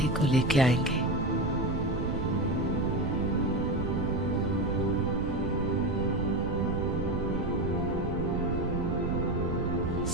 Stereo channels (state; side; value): noise; right; rumble, 2 dB below the sound